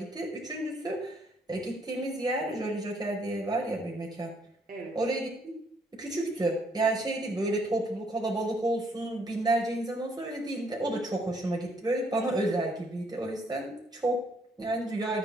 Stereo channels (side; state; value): both; normal; correlation 0.69